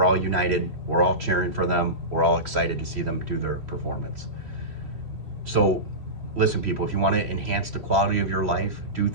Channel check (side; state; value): left; late; 3.1 ms